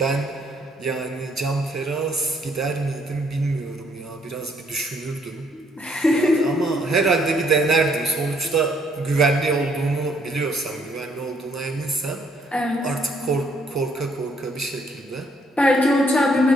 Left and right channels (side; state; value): both; normal; correlation 0.68